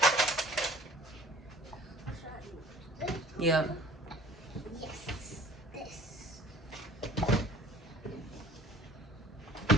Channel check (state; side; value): normal; both; correlation 0.50